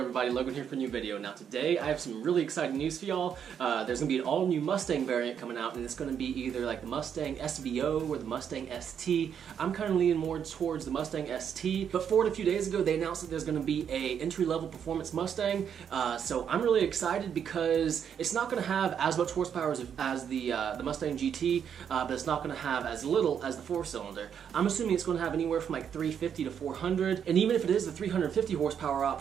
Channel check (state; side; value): quieter; left; 8.1 dB